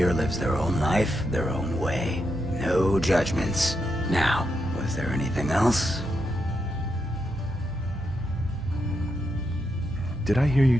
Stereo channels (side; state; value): both; normal; correlation 0.83